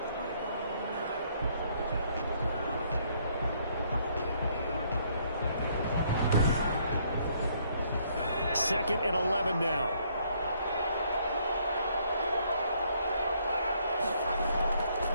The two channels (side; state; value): both; inverted; correlation -0.67